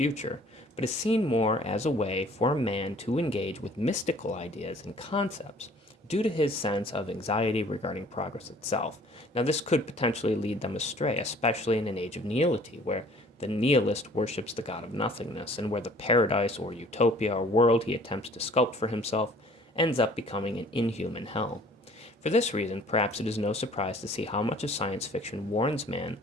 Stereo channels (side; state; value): both; normal; correlation 0.54